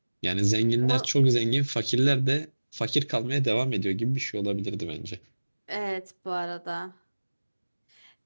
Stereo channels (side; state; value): both; inverted; correlation -1.00